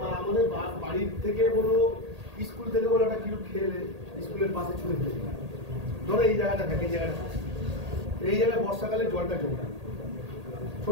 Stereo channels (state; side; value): late; left; 1.8 ms